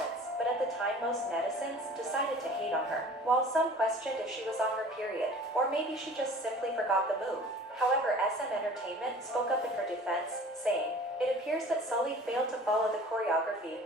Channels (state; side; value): normal; both; correlation 0.45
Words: but at the time most netizens decided to hate on her. While some questioned if she was on her period, or maybe she just simply forgot the move. However, SM Entertainment spoke up in her defense, saying, "It appears that Sulli failed to follow the choreography